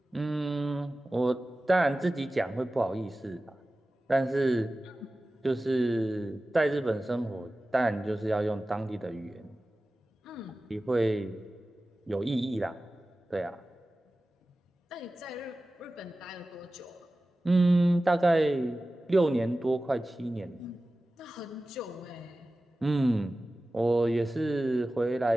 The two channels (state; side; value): normal; both; correlation 0.96